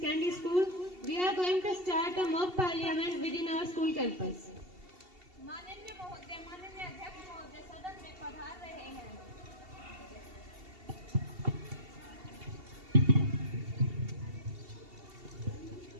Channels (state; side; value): late; left; 2.7 ms